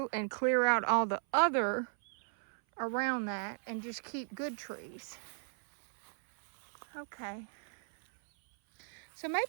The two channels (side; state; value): left; silent; 54 dB below the other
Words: and clear out all the other around that and just keep good trees. Okay. So maybe